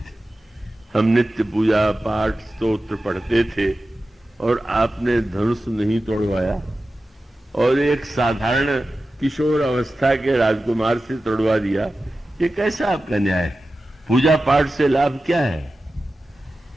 हम नित्य पूजा पाठ स्तोत्र पढ़ते थे और आपने धनुष नहीं तोड़वाया, और एक साधारण किशोर अवस्था के राजकुमार से तोड़वा दिया, ये कैसा आपका न्याय है? पूजा पाठ से लाभ क्या है?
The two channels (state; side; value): normal; both; correlation 0.94